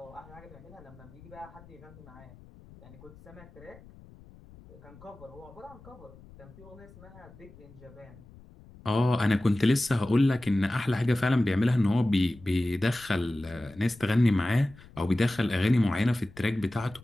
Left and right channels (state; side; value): noise; left; rumble, 22 dB below the sound